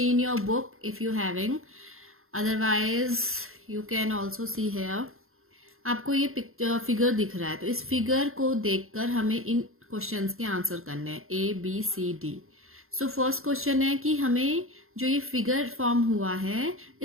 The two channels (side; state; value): left; late; 0.62 ms